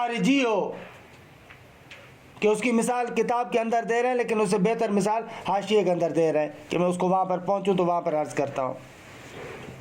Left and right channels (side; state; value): both; identical; correlation 1.00